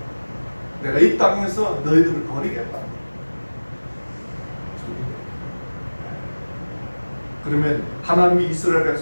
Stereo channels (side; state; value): both; inverted; correlation -1.00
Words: 내가 이 땅에서 너희들을 버리겠다. 그러면 하나님이 이스라엘